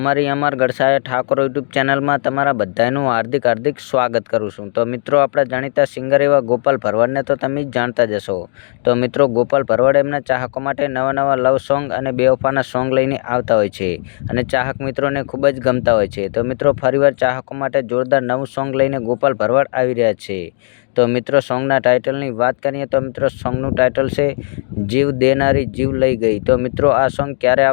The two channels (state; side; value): silent; right; digital silence